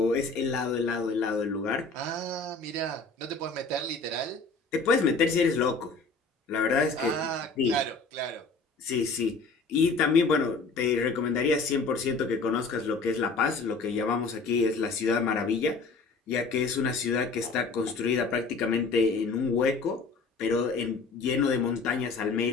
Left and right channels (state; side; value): quieter; right; 4.1 dB